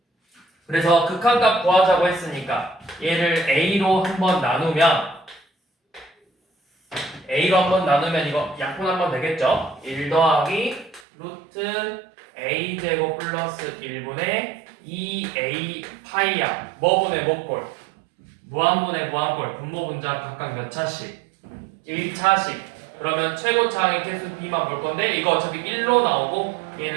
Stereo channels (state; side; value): drops out; left; at 11.1 s